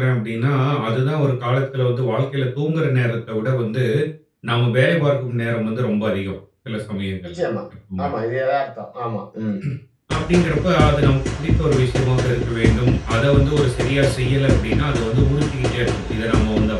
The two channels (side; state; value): both; identical; correlation 1.00